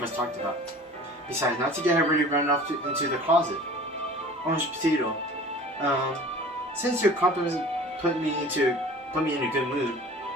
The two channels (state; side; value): normal; both; correlation 0.43